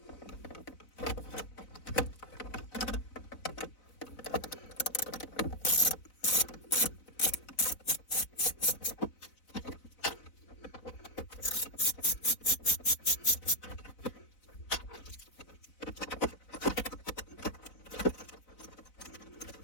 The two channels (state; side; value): late; right; 4.0 ms